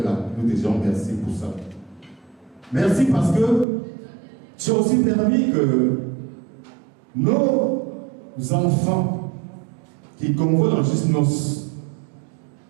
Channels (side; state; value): left; drops out; at 3.7 s